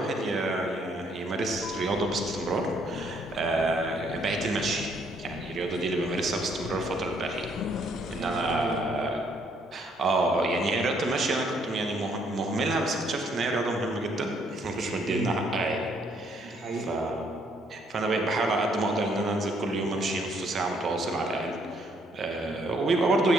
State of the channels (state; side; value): normal; both; correlation 0.68